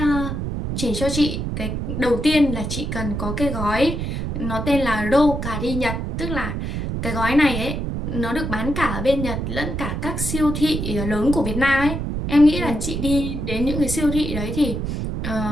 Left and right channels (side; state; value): right; noise; rumble, 3 dB below the sound